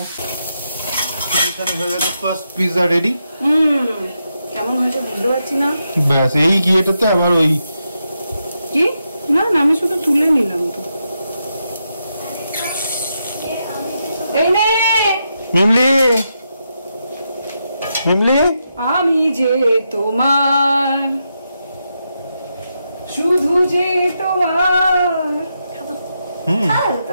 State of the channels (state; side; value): inverted; both; correlation -0.84